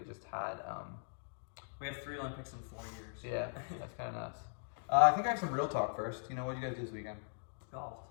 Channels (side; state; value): right; silent; digital silence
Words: just had... We have 3 Olympics in 4 years. Yeah, that's kind of nuts. I think I have some real talk first. You know, what did you guys do this weekend? Golf.